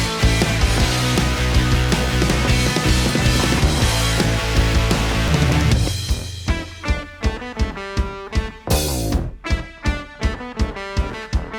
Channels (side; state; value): both; identical; correlation 1.00